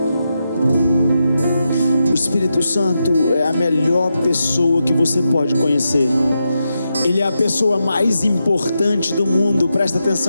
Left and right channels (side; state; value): both; inverted; correlation -0.87